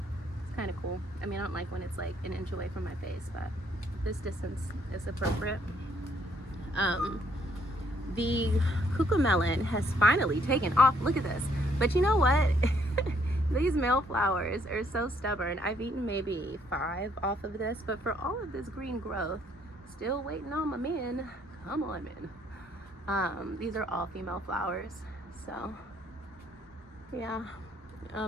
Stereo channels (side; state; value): both; normal; correlation 0.68